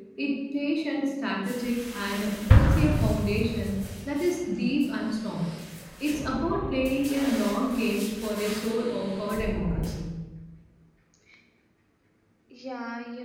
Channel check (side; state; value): both; identical; correlation 1.00